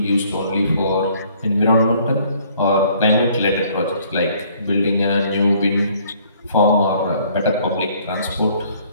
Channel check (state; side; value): inverted; both; correlation -0.60